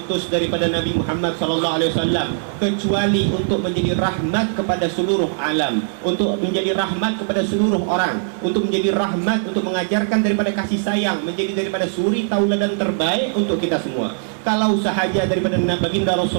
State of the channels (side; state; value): left; silent; digital silence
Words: daripada Nabi Muhammad SAW kecuali untuk menjadi rahmat kepada seluruh alam, untuk menjadi rahmat kepada seluruh orang, untuk menjadi rahmat, untuk mengajarkan daripada kasih sayang, menjadi daripada suri tauladan terbaik untuk kita semua. Kalau sahaja daripada baginda